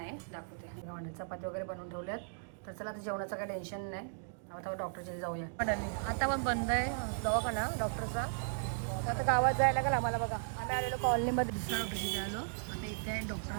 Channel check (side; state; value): left; silent; digital silence